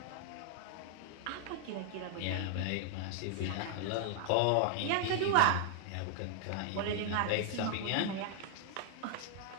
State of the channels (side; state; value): both; different; correlation 0.00